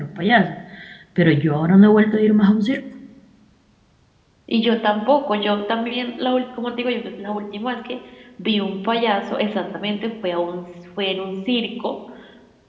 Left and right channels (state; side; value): identical; both; correlation 1.00